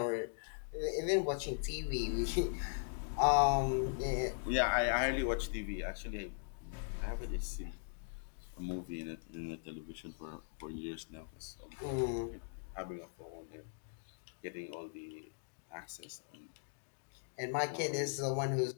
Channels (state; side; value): silent; right; digital silence